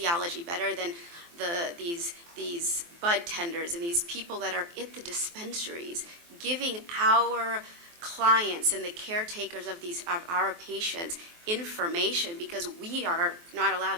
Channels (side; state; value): left; late; 23 ms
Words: better than these bud tenders and these people that are at the dispensaries giving our clients and the caretakers of our patients information because we are not allowed